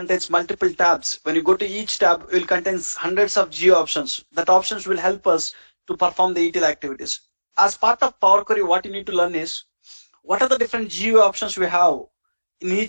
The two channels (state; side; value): inverted; both; correlation -1.00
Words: multiple tabs. When you go to each tab, it will contain hundreds of geo options. That options will help us to perform the ETL activities. As part of Power Query, what you need to learn is what are the different geo options we have in